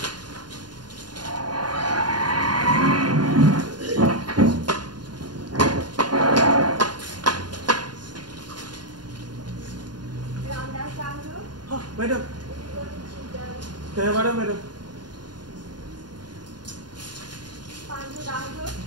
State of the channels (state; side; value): late; left; 0.70 ms